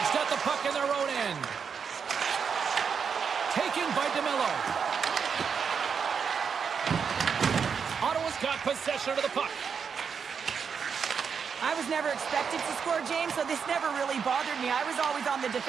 got the puck in their own end. Taken by DeMello. Ottawa's got possession of the puck. I was never expected to score, James, so this never really bothered me. I was always on the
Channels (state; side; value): quieter; left; 6.4 dB